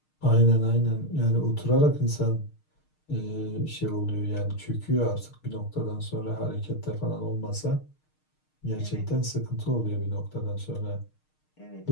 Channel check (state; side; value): late; right; 6.5 ms